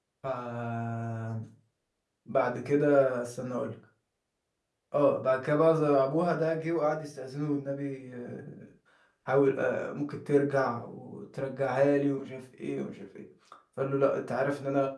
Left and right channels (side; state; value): both; identical; correlation 1.00